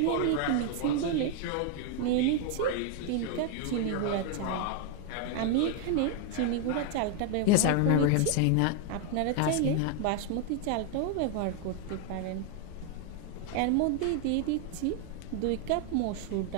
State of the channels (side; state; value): both; different; correlation 0.00